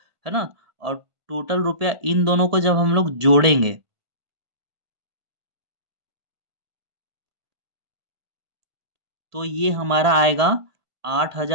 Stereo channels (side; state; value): left; late; 1.5 ms